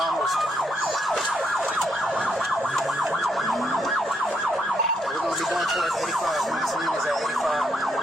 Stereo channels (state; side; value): normal; both; correlation 0.76